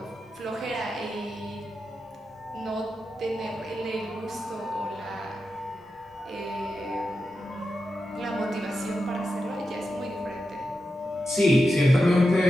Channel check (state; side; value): normal; both; correlation 0.89